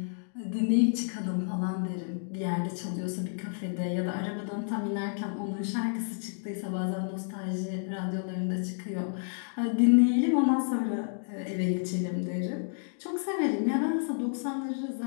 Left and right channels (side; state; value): right; silent; digital silence